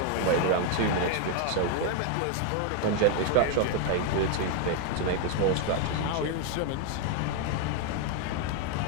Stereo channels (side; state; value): both; different; correlation 0.00